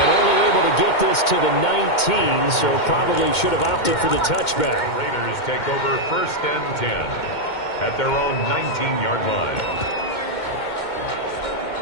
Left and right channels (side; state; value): right; late; 2.2 ms